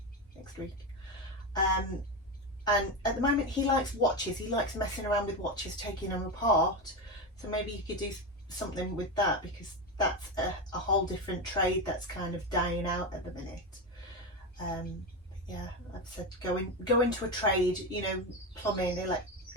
next week. And at the moment he likes watches. He likes messing around with watches, taking them apart. So maybe you could do something with that, because that's a whole different trade that's kind of dying out at the minute. Yeah, I've said go into a trade, you know, plumbing,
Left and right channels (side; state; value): both; normal; correlation 0.15